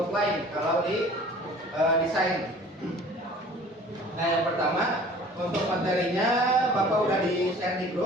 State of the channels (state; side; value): normal; both; correlation 0.48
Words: kalau di desain. Nah, yang pertama untuk materinya Bapak udah di share di